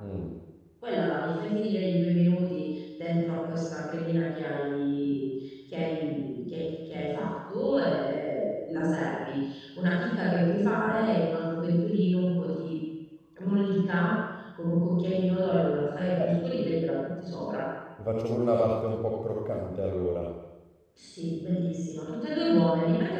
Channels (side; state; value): both; identical; correlation 1.00